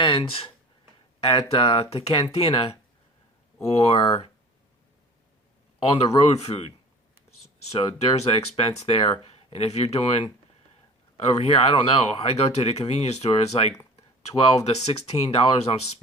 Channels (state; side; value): normal; both; correlation 0.42